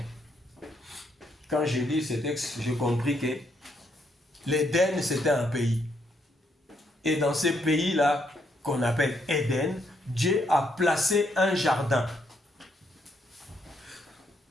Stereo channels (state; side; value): normal; both; correlation 0.75